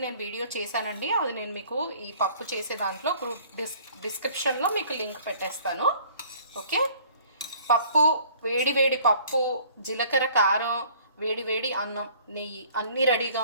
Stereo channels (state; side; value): inverted; both; correlation -0.53